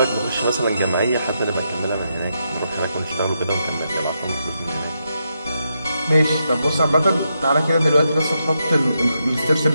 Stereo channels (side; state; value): both; inverted; correlation -0.83